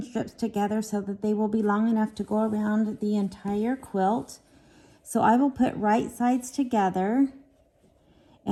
strips together so that they will be long enough to go around the entire quilt. So I will put right sides together,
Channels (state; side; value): identical; both; correlation 1.00